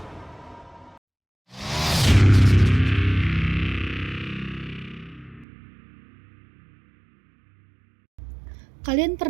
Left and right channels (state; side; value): drops out; left; at 5.5 s